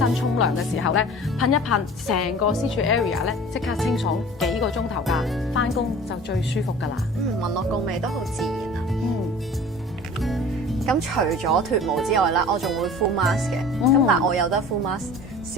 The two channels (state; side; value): normal; both; correlation 0.42